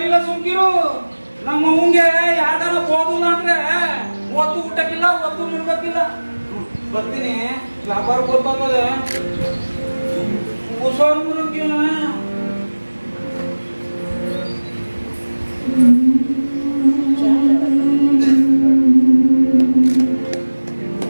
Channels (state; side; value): inverted; both; correlation -1.00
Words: ಸುಮ್ಕಿರು. ನಮ್ಮ ಅವಂಗೆ ಯಾರ್ದಾರ ಹೋದಿಲ್ಲ ಅಂದ್ರೆ ಒತ್ತು ಊಟಕ್ಕಿಲ್ಲ, ಒತ್ತು ನಿಲ್ಬೇಕಿಲ್ಲ. ಬರ್ತೀನಿ, ವ್ಯಾಪಾರ ಗೊತ್ತಾಗದೆ ಹುಷಾರು ಮುರುಗಿ.